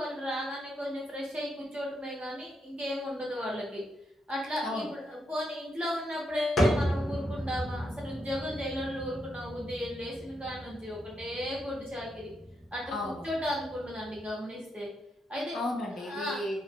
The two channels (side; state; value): both; normal; correlation 0.81